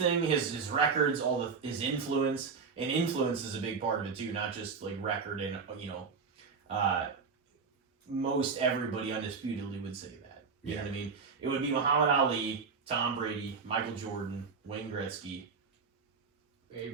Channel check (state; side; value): quieter; left; 5.2 dB